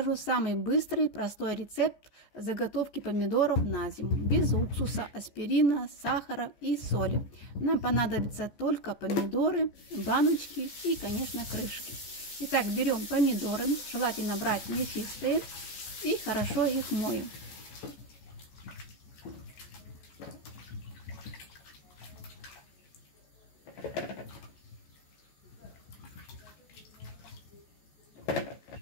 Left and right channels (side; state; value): right; late; 14 ms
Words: самый быстрый, простой рецепт заготовки помидоров на зиму. Без уксуса, аспирина, сахара и соли. Нам понадобятся только помидоры, баночки и, конечно, крышки. Итак, берем помидоры, желательно брать мясистые, и хорошо их моем.